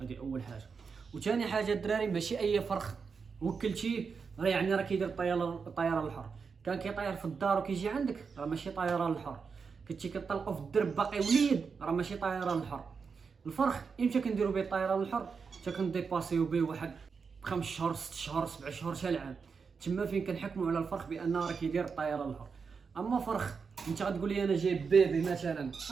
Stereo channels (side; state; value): left; quieter; 5.5 dB